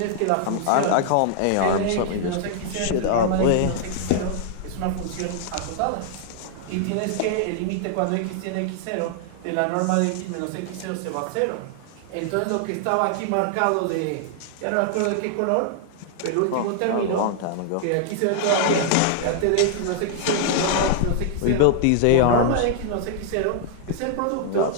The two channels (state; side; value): different; both; correlation -0.01